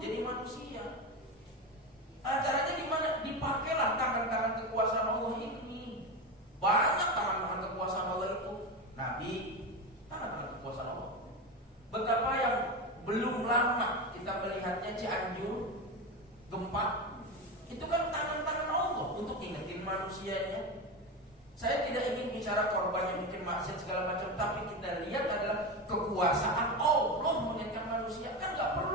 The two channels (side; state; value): both; normal; correlation 0.19